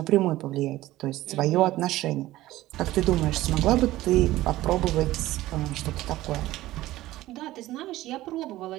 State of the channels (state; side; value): quieter; left; 16.4 dB